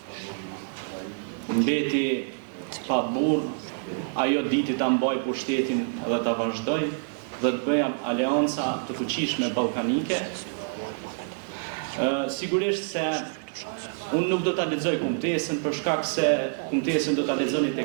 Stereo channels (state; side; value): silent; left; digital silence